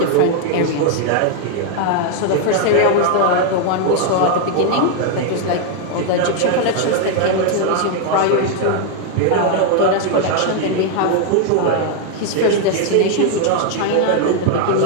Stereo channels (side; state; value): both; different; correlation 0.01